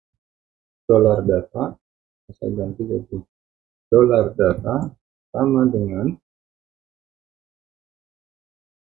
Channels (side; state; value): left; quieter; 13.5 dB